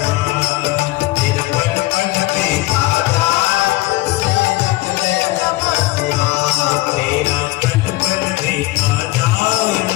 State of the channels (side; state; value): right; quieter; 19.5 dB